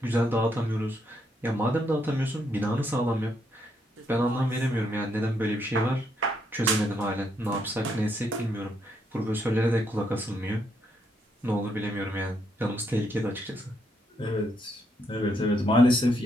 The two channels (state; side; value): normal; both; correlation 0.76